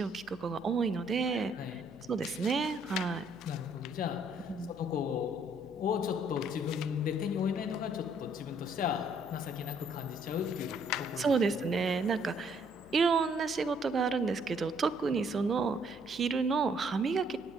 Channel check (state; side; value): noise; left; hum, 24 dB below the sound